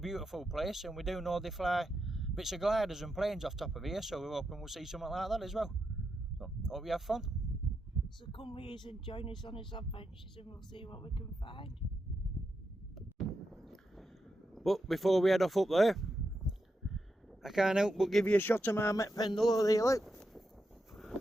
place, and we do know they fly bits of gliders and planes off top of here, so we're hoping we'll see something like that as well. So hope you have fun. So come with us and join us on his adventures and we'll see what we can find. But before we head off up there, I can't help but give you a shot of my met Pendle over there, look.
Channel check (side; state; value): both; normal; correlation 0.86